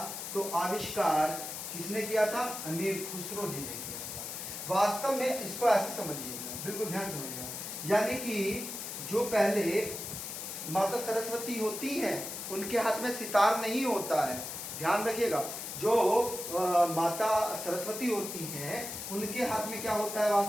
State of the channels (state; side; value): noise; left; hiss, 7 dB below the sound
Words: तो आविष्कार किसने किया था, अमीर खुसरो जी ने किया था। वास्तव में इसको ऐसे समझिएगा, बिल्कुल ध्यान समझिएगा, यानी कि जो पहले माता सरस्वती होती हैं उनके हाथ में सितार नहीं होता है, ध्यान रखिएगा। जो माता सरस्वती होती हैं उनके हाथ में क्या होता है,